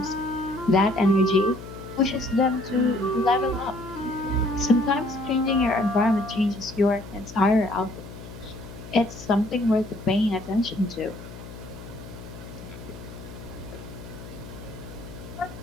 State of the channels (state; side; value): noise; left; hum, 14 dB below the sound